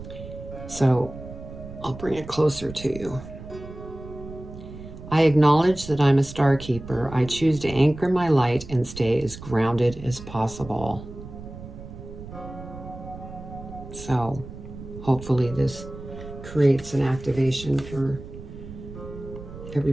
So I'll bring it closer to you. I acknowledge that I'm a star keeper. I choose to anchor my light and stay as grounded as possible. So hopefully this creates an activation for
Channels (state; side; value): noise; right; rumble, 13 dB below the sound